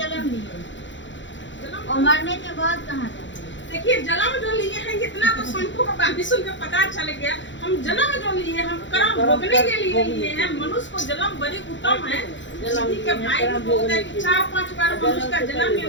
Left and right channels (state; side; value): late; right; 0.54 ms